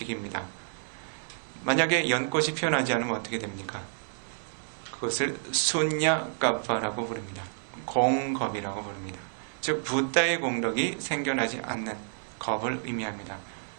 만약에 연꽃이 피어나지 않으면 어떻게 됩니까? 그것을 순야까파라고 부릅니다. 공겁이라고 부릅니다. 즉 부다의 공덕이 생겨나지 않는 겁을 의미합니다.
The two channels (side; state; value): left; silent; 58 dB below the other